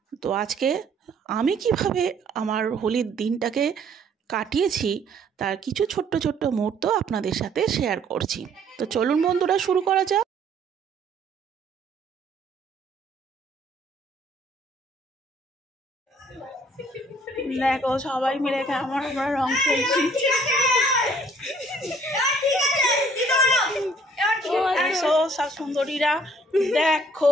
তো আজকে আমি কিভাবে আমার হোলির দিনটাকে কাটিয়েছি তার কিছু ছোট্ট ছোট্ট মুহূর্ত আপনাদের সাথে শেয়ার করছি। তো চলুন বন্ধুরা, শুরু করা যাক। দেখো সবাই মিলে আমরা রং খেলছি। সব সুন্দরীরা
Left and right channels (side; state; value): both; normal; correlation 0.60